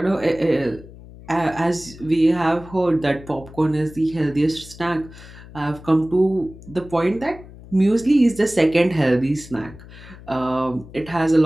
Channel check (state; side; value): noise; left; hum, 18 dB below the sound